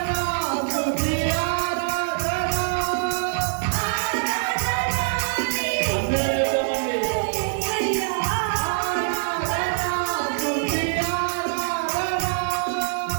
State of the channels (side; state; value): left; silent; digital silence